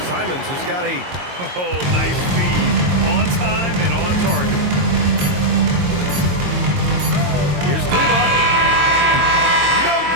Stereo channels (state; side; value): late; left; 22 ms